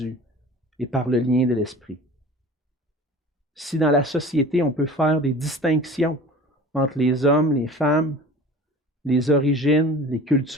et par le lien de l'Esprit. Si dans la société, on peut faire des distinctions entre les hommes, les femmes, les origines, les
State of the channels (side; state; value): both; normal; correlation 0.41